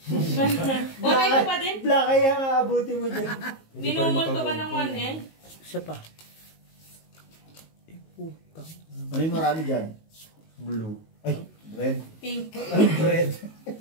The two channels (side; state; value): right; late; 19 ms